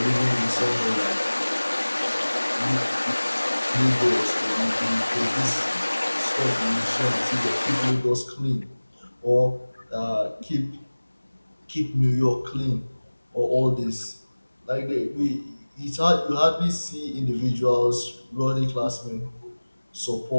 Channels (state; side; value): inverted; both; correlation -1.00